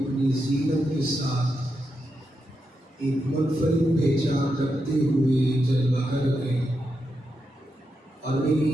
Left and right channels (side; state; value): both; normal; correlation 0.85